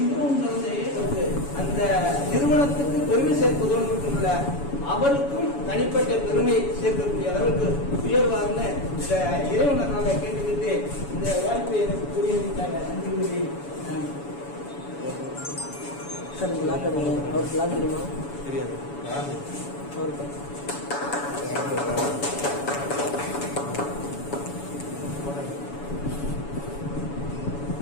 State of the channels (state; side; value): late; right; 7.1 ms